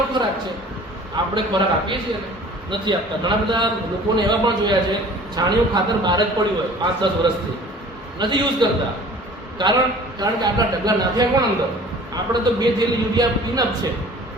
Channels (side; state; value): both; normal; correlation 0.47